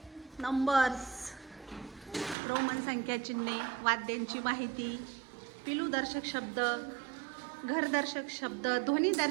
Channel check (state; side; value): drops out; left; at 2.4 s